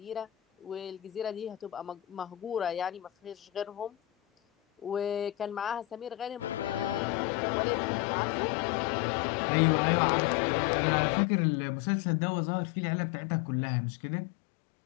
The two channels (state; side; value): drops out; right; at 7.0 s